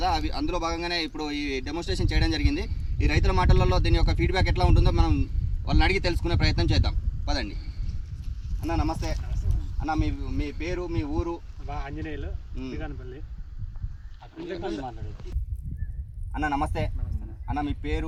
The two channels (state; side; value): identical; both; correlation 1.00